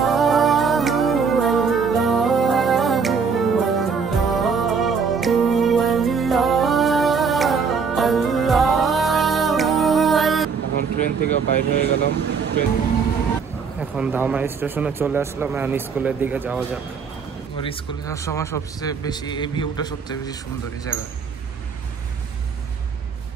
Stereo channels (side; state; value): left; quieter; 5.7 dB